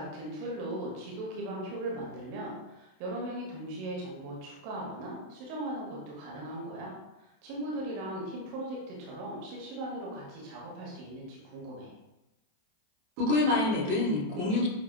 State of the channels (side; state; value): left; late; 27 ms